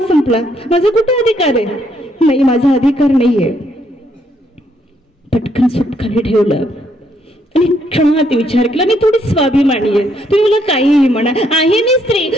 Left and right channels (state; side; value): normal; both; correlation 0.72